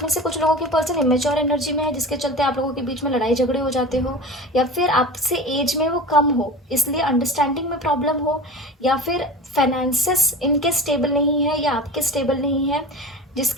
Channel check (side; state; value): both; normal; correlation 0.33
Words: में से कुछ लोगों के पर्सन इमेच्योर एनर्जी में है, जिसके चलते आप लोगों के बीच में लड़ाई झगड़े हो जाते हो, या फिर आपसे एज में वो कम हो इसलिए अंडरस्टैंडिंग में प्रॉब्लम हो, या फिर फाइनेंसेस इनके स्टेबल नहीं है या आपके स्टेबल नहीं है,